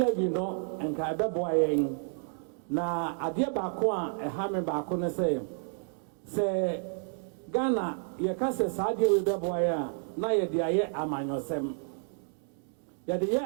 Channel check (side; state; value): left; silent; 57 dB below the other